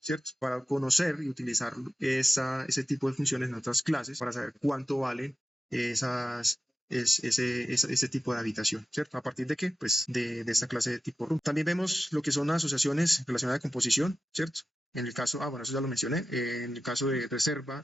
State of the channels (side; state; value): both; normal; correlation 0.92